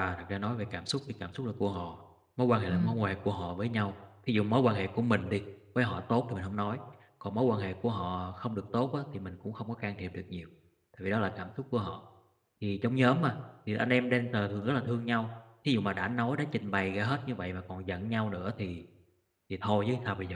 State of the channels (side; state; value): both; identical; correlation 1.00